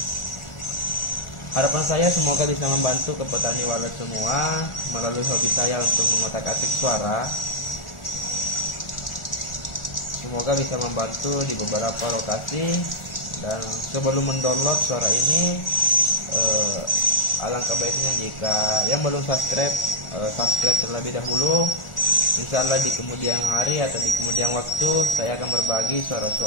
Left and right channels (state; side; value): late; right; 1.4 ms